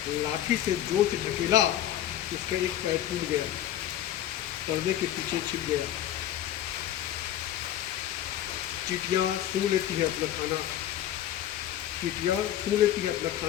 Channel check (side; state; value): right; quieter; 11.7 dB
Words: लाठी से जोर से ढकेला, इसका एक पैर टूट गया, पर्दे के पीछे छिप गया। चींटियाँ सूंघ लेती है अपना खाना, चींटियाँ सूंघ लेती है अपना